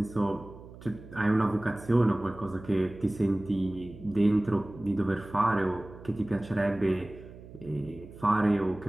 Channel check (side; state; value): right; noise; hum, 17 dB below the sound